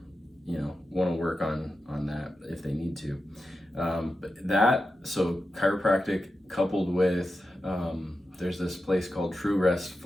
to work on that if they need to. So chiropractic coupled with, there's this place called True Rest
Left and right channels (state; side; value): normal; both; correlation 0.90